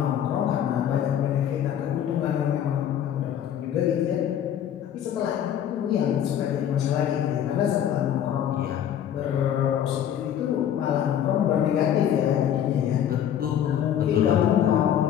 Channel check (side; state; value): right; quieter; 9.9 dB